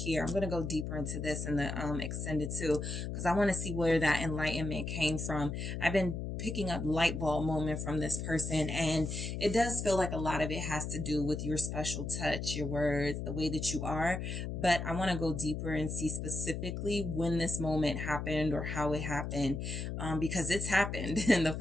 I'm going to go deeper into this in the extended too, because I want to see where that enlightenment came from. I've been picking up light bulb moment from this person, and it does feel like a lot of it has to do with your special touch, your words, the way that you are. But I want to go deeper and see specifically when this moment happened or how it happened, because it's happened. And the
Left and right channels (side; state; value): left; noise; hum, 4 dB below the sound